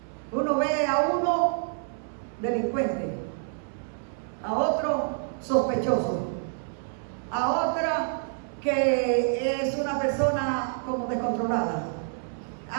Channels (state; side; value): silent; left; 57 dB below the other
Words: Uno ve a uno delincuente, a otro sospechoso, a otra que es una persona como descontrolada,